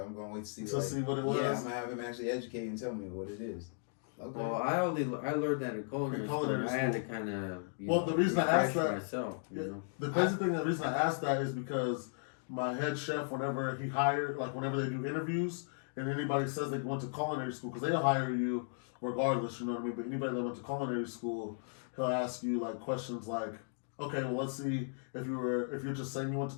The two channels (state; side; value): silent; right; digital silence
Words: I'm gonna wait to see. To like, see what it was? Yeah, I'm gonna have him actually educate and tell me what it is. Okay. Well, I learned that in culinary school. culinary I had to school. kind of Well, the reason I asked refresh that- myself, you Yeah. know. The crazy thing, the reason I asked that is because my head chef, whenever he hired, like whenever they do interviews, and anybody says they went to culinary school, because they'll hire you regardless, you know what I mean? But anybody that went to culinary school, he'll ask you like questions like, okay, well, let's see if you're just saying you went